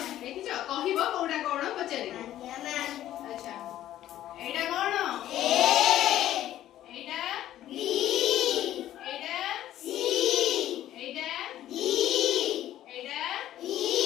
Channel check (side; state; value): right; quieter; 12.8 dB